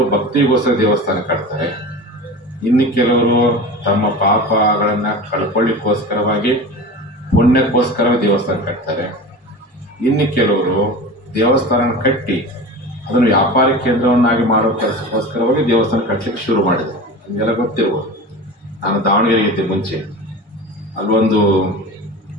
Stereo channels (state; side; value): normal; both; correlation 0.32